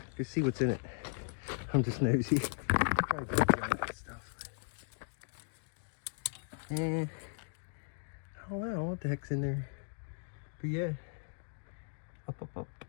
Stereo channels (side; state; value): right; silent; digital silence